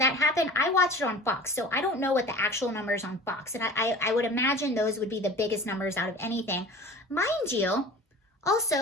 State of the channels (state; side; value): normal; both; correlation 0.40